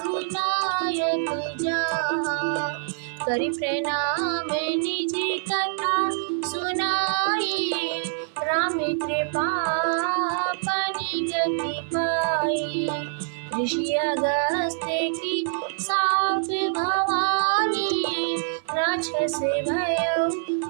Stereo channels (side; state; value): left; silent; 62 dB below the other